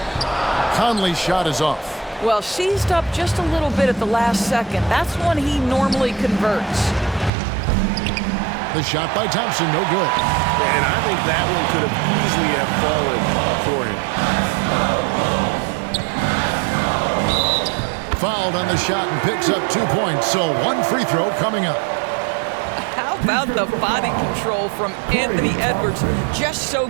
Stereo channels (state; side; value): drops out; left; at 7.3 s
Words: Conley's shot is off. Well, seized up just a little bit at the last second. That's when he normally converts. The shot by Thompson, no good. And I think that one could have easily have fallen for him. Fouled on the shot and picks up 2 points, so 1 free throw coming up. How about the body control from Anthony Edwards? Just so